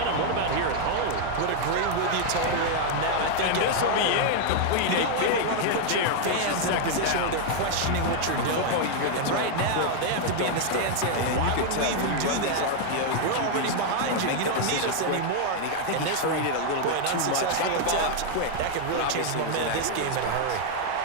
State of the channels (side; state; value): both; different; correlation 0.00